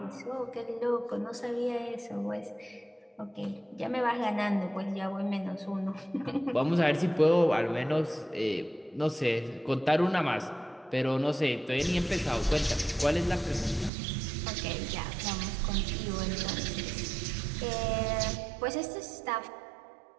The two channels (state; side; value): drops out; left; at 13.9 s